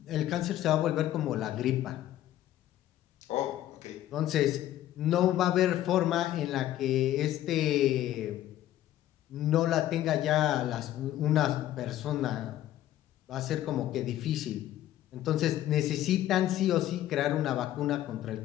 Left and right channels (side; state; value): right; quieter; 13.0 dB